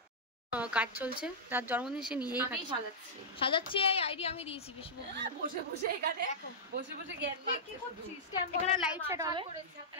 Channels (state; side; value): normal; both; correlation -0.10